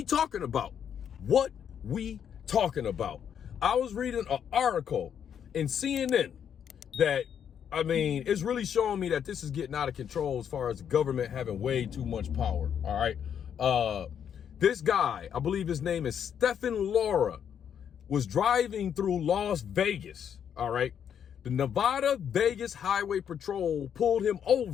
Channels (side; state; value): right; quieter; 8.4 dB